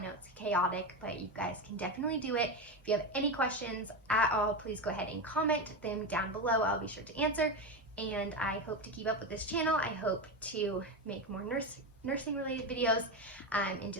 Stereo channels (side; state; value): both; normal; correlation 0.16